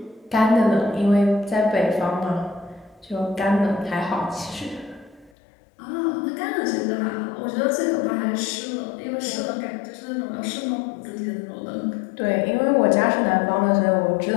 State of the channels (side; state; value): right; drops out; at 5.3 s